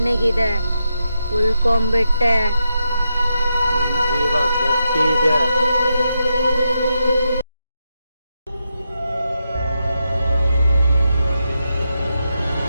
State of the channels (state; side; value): inverted; both; correlation -0.85